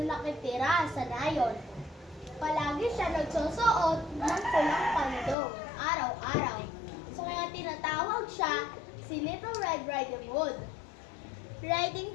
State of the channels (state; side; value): drops out; right; at 5.4 s